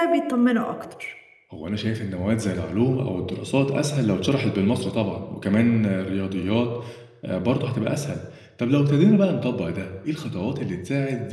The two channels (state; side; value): identical; both; correlation 1.00